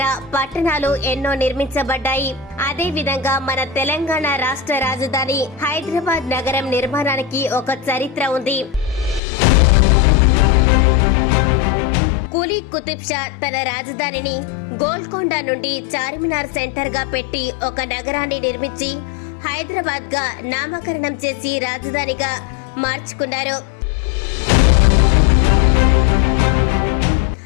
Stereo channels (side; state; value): right; drops out; at 9.2 s